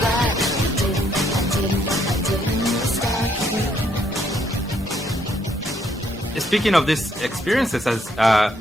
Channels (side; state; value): both; normal; correlation 0.71